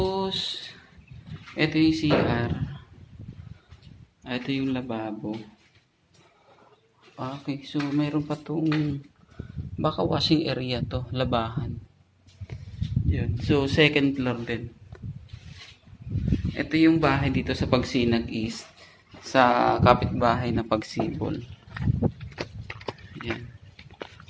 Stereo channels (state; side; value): identical; both; correlation 1.00